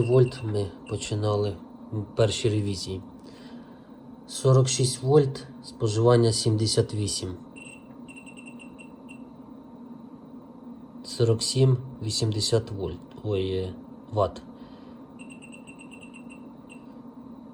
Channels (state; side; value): identical; both; correlation 1.00